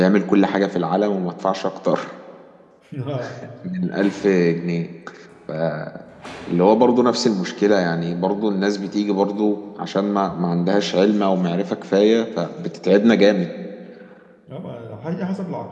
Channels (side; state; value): both; identical; correlation 1.00